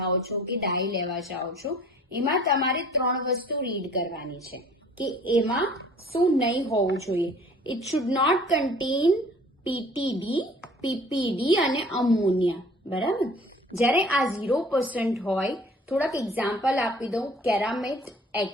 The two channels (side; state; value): both; normal; correlation 0.51